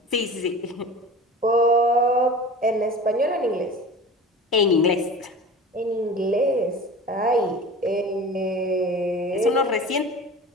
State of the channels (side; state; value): both; normal; correlation 0.36